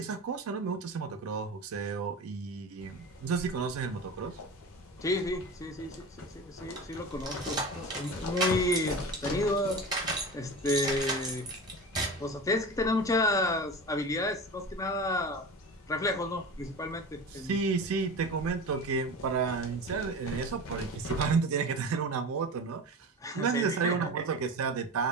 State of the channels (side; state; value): both; normal; correlation 0.30